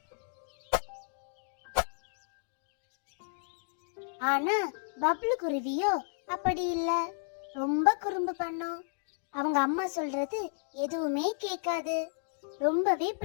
ஆனா பப்ளு குருவியோ அப்படி இல்ல, ரொம்ப குறும்பு பண்ணும். அவங்க அம்மா சொல்றது எதுவுமே கேட்காது, ரொம்பவே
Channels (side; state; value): right; silent; digital silence